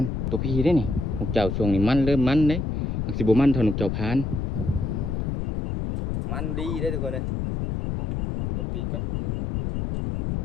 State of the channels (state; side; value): noise; left; rumble, 2 dB below the sound